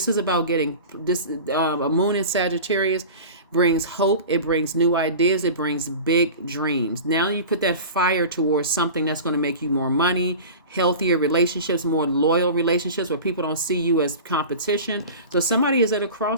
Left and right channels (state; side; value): inverted; both; correlation -0.35